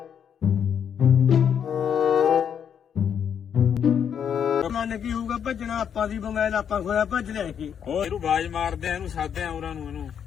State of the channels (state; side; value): quieter; right; 8.2 dB